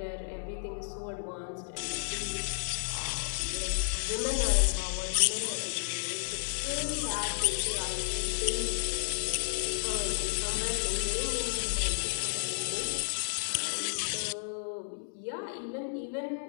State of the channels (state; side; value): silent; right; digital silence